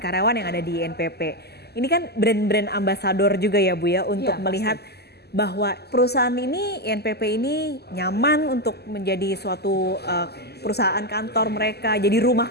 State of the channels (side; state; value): right; late; 0.47 ms